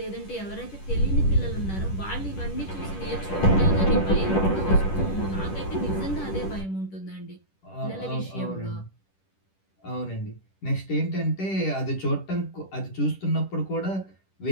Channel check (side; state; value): right; late; 10 ms